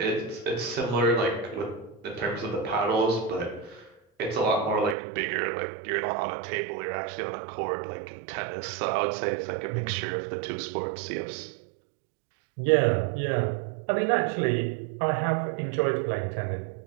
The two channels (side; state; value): left; drops out; at 5.0 s